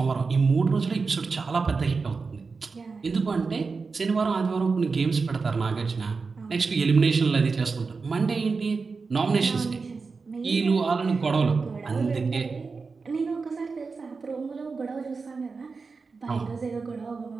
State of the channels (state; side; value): quieter; left; 4.6 dB